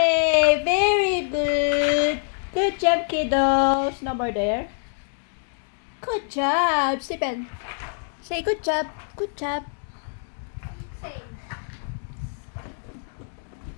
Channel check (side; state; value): right; silent; digital silence